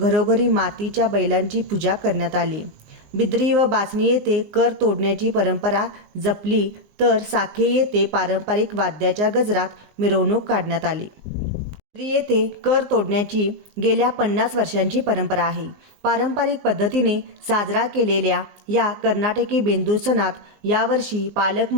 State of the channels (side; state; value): left; late; 19 ms